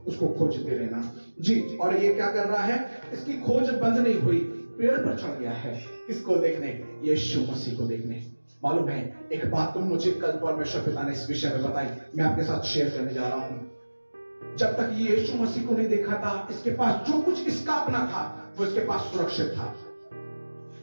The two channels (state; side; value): inverted; both; correlation -1.00